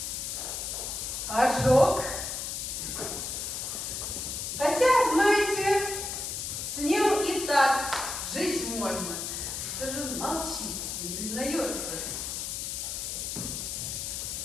Ожог. Хотя, знаете, с ним и так жить можно. Что же он молчит, не признается?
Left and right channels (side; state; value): left; noise; hiss, 4 dB below the sound